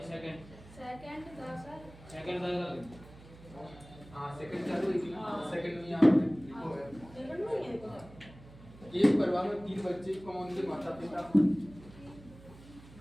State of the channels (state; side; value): noise; right; hum, 20 dB below the sound